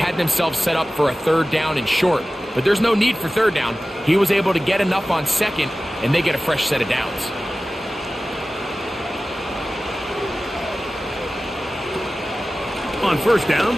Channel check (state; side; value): normal; both; correlation 0.96